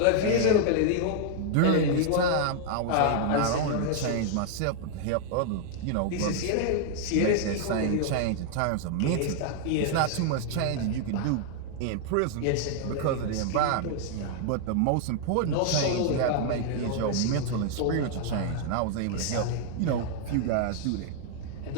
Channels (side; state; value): both; different; correlation 0.00